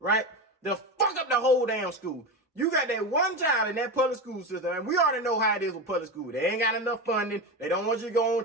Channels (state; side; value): normal; both; correlation 0.20